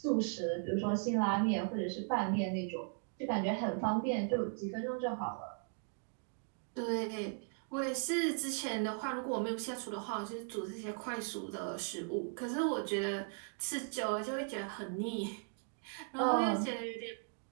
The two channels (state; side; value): silent; left; 53 dB below the other